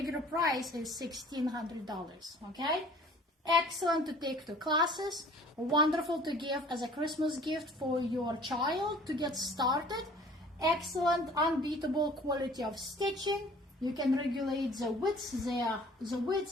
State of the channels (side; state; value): both; normal; correlation 0.50